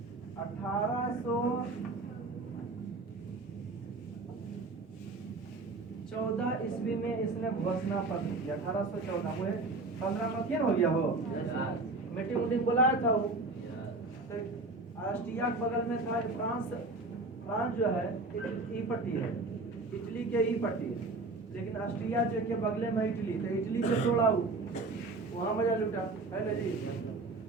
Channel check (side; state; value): left; quieter; 3.3 dB